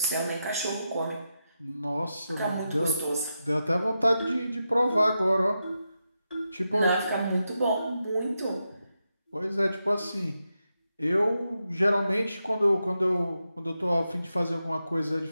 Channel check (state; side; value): inverted; both; correlation -0.87